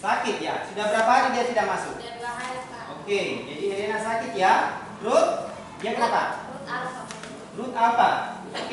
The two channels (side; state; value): both; identical; correlation 1.00